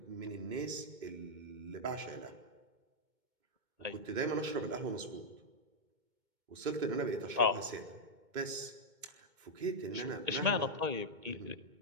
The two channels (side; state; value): left; late; 2.2 ms